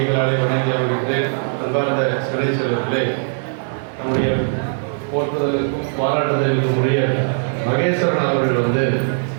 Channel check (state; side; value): silent; left; 62 dB below the other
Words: வணங்கி வருகின்றேன். அன்பார்ந்த சிறை செல்வர்களே, நம்முடைய போற்றுதலுக்கும் பாராட்டுதலுக்கும் உரிய மகேஸ்வரன் அவர்கள்